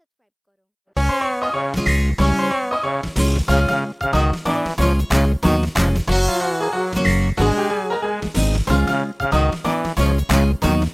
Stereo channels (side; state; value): both; identical; correlation 1.00